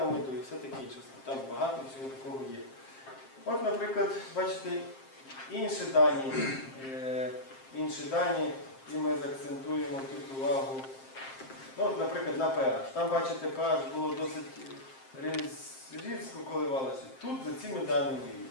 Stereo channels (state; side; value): late; right; 7.5 ms